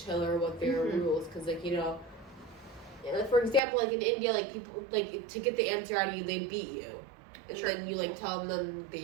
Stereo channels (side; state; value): left; drops out; at 3.6 s